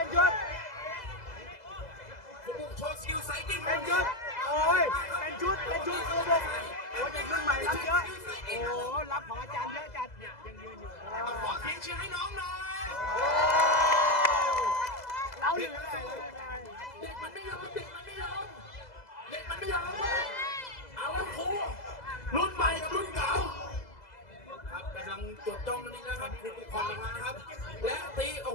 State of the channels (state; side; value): late; right; 2.0 ms